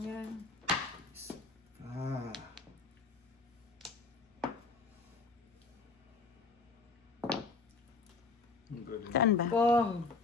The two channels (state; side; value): quieter; right; 4.1 dB